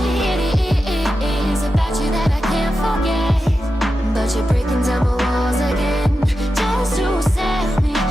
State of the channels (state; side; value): normal; both; correlation 0.91